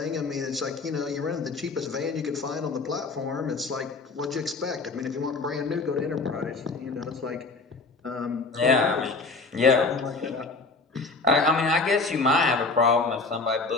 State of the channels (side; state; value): right; quieter; 3.8 dB